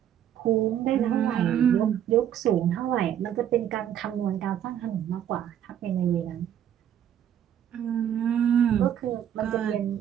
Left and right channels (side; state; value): left; quieter; 10.1 dB